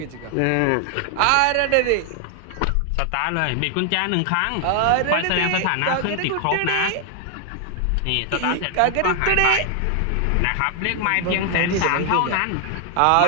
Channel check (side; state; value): both; different; correlation 0.00